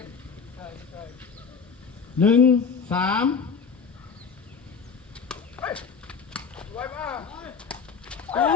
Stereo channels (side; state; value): right; quieter; 5.8 dB